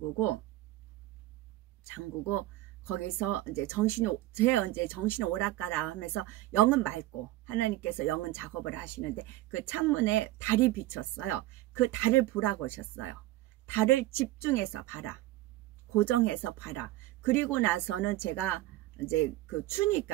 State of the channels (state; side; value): quieter; left; 16.5 dB